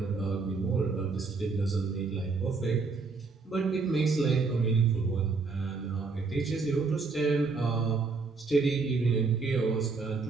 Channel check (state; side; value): quieter; left; 4.3 dB